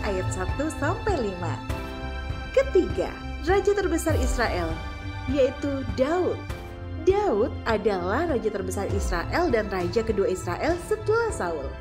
ayat 1 sampai 5. Ketiga, raja terbesar Israel, yaitu Daud. Daud adalah raja terbesar Israel dan raja kedua Israel setelah Saul.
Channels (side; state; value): both; identical; correlation 1.00